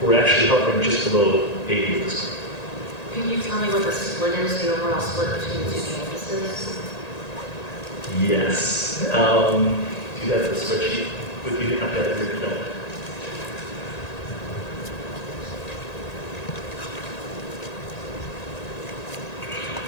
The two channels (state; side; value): late; right; 1.9 ms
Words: We're actually hovering just below 80 at this point. Can you tell me what the split is, the overall split between the two campuses? Yes. Do you have the spreadsheet with you? I've got it here. No.